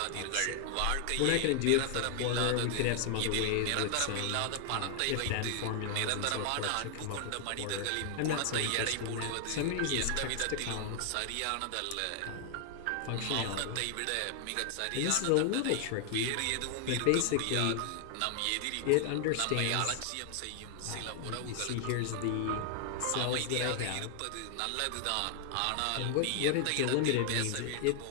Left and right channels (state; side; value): different; both; correlation 0.00